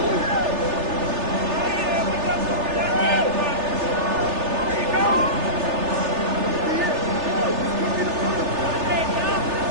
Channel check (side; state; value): left; late; 3.3 ms